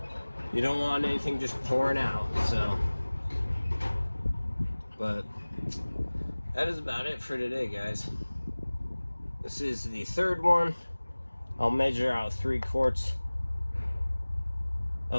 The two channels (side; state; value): both; inverted; correlation -1.00